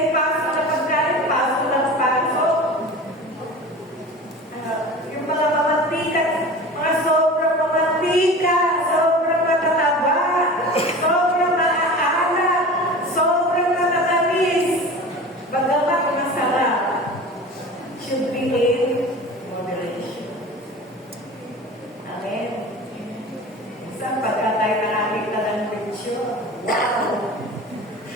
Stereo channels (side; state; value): both; normal; correlation 0.36